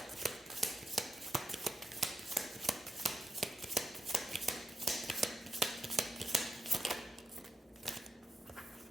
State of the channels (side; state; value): both; normal; correlation 0.85